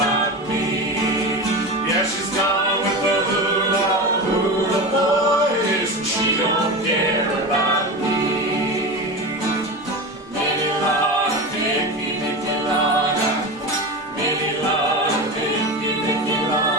me. Yeah, she's gone with the hula hula boys, and she don't care about me. Lady Lana, Vicky, Vicky Lana. Lady Lana, Vicky, Vicky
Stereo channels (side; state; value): both; normal; correlation 0.24